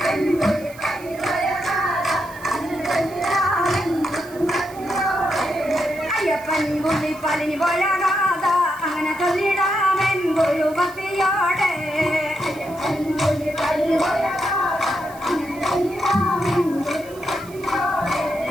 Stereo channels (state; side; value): noise; right; hiss, 21 dB below the sound